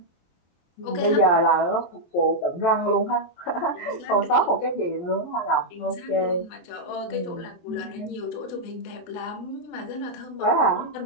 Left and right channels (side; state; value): right; late; 23 ms